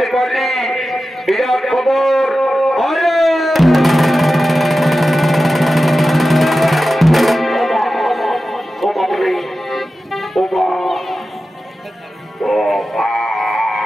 পারলি বিরাট খবর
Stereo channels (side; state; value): both; normal; correlation 0.94